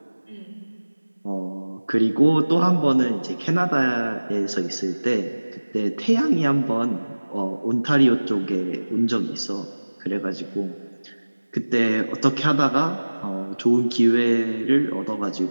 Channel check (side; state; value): both; inverted; correlation -1.00